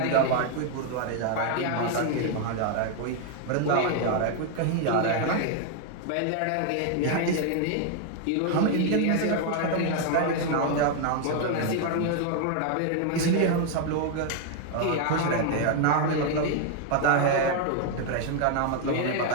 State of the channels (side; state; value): both; different; correlation 0.00